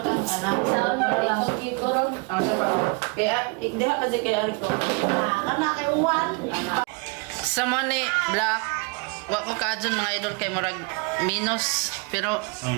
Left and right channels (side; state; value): left; quieter; 30.8 dB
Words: ang anak. Sa ito ron. Okay pa. Kaya, ikdiha ka Jay kaya ko. Anak kay Juan. Sa money, black. Wa ko kaadyon mga idol kay murag minus pero